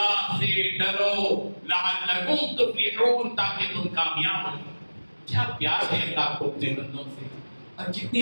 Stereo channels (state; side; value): inverted; both; correlation -1.00